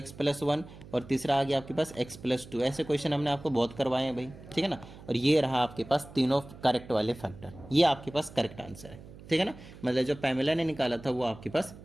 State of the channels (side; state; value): right; noise; hum, 18 dB below the sound